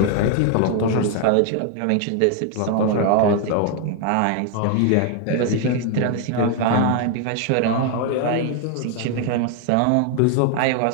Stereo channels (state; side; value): different; both; correlation 0.01